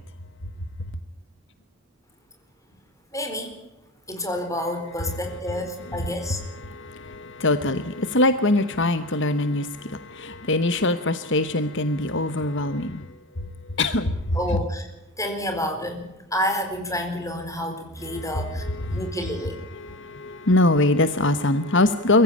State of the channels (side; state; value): both; normal; correlation 0.28